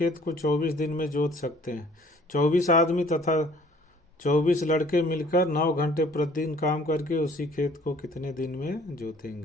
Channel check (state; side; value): normal; both; correlation 0.56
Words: को 24 दिन में जोत सकते हैं। 24 आदमी तथा 24 लड़के मिलकर 9 घंटे प्रतिदिन काम करके उसी खेत को कितने दिन में